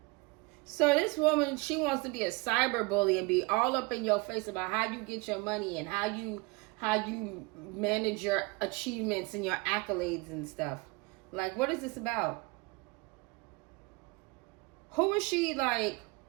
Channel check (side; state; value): left; quieter; 26.7 dB